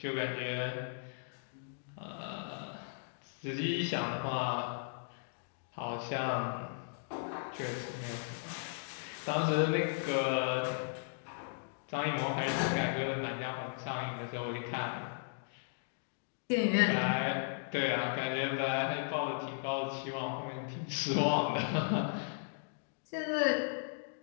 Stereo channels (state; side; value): silent; right; digital silence